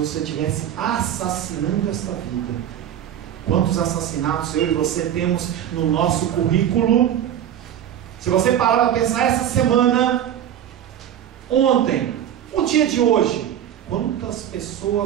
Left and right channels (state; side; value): quieter; left; 10.4 dB